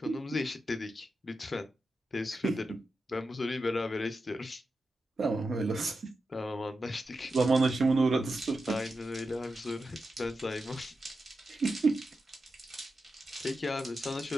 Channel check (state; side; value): normal; both; correlation 0.90